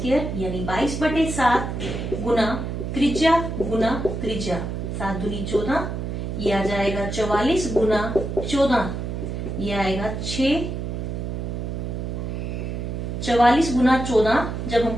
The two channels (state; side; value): noise; right; hum, 4 dB below the sound